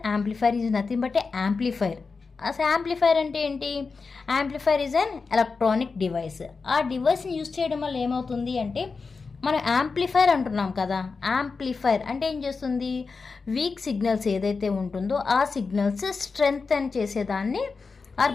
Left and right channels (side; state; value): right; quieter; 4.6 dB